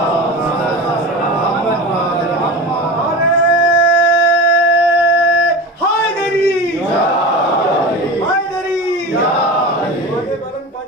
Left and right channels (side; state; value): both; normal; correlation 0.29